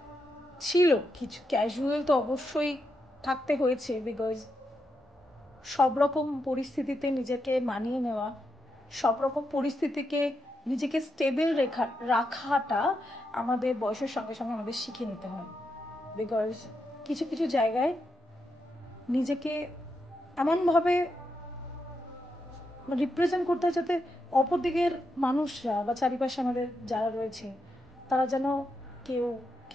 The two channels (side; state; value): both; normal; correlation 0.84